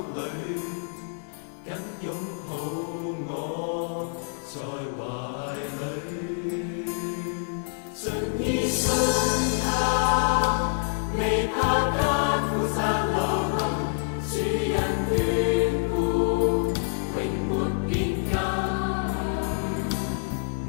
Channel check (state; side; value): silent; right; 59 dB below the other